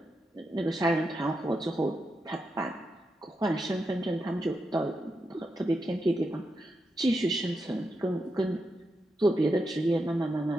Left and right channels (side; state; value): both; normal; correlation 0.86